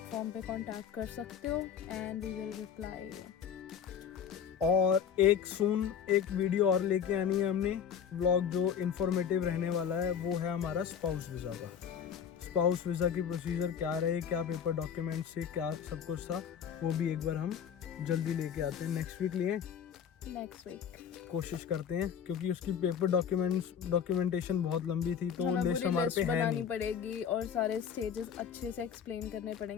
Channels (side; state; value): right; quieter; 7.9 dB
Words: पे कांटेक्ट कर सकते हो एंड वी विल रिप्लाई। और एक वीडियो और लेके आनी है हमने, व्लॉग जो इन्फॉर्मेटिव रहने वाला है, वो है हमारा स्पाउस वीज़ा का। स्पाउस वीज़ा की प्रोसीजर क्या रहे, क्या पेपर डॉक्यूमेंट से क्या सब कुछ था, वो भी एक बार हम जल्दी लेके आते हैं। नेक्स्ट वीक कोशिश करते हैं, क्योंकि उसकी पेपर डॉक्यूमेंटेशन बहुत लंबी थी, तो लिस्ट हमारे पे है बनानी नहीं। पड़ेगी और सारे स्टेजेस अच्छे से एक्सप्लेन करने